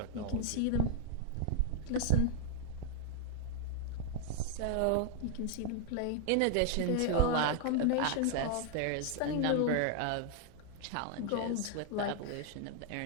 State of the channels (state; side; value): different; both; correlation 0.00